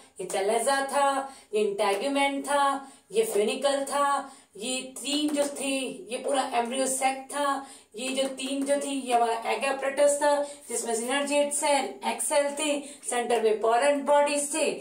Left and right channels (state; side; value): identical; both; correlation 1.00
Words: ये चलेजा था, ये इंटैग्यूमेंट था, ये फ्यूनिकल था, ये तीन जो थी ये पूरा एम्ब्रियो सैक था, ये जो तीन जो थी ये हमारा एग apparatus था जिसमें सिनर्जिएट सेल, एक्स सेल थे, सेंटर में पोरेंट बॉडीज थे,